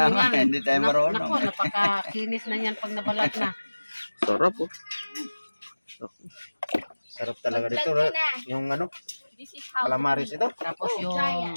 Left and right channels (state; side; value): inverted; both; correlation -1.00